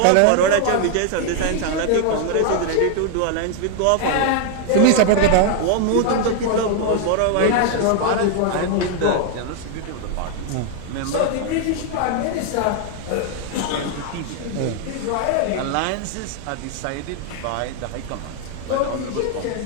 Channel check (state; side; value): different; both; correlation 0.00